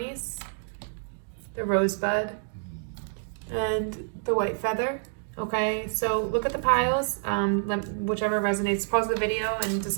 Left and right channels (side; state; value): left; silent; 59 dB below the other